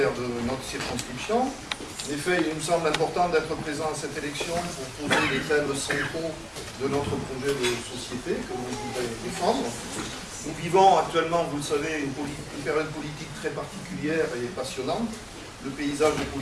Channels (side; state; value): both; identical; correlation 1.00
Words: de notre circonscription. En effet, il nous semble important d'être présent à cette élection pour poser les thèmes centraux de notre projet de société que nous voudrions défendre. Nous vivons actuellement, vous le savez, une période politique très particulière et passionnante. Le paysage